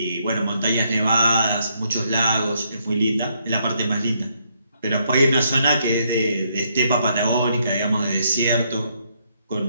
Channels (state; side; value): inverted; both; correlation -0.74